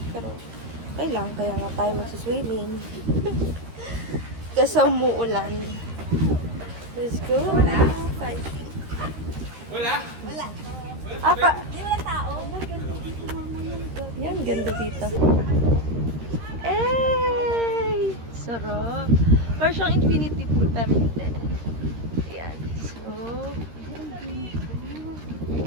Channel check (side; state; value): left; late; 13 ms